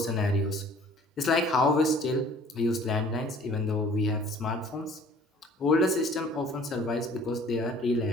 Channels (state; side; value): normal; both; correlation 0.52